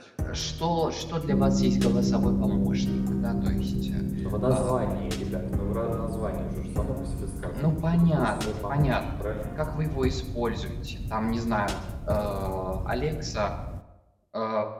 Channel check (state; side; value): identical; both; correlation 1.00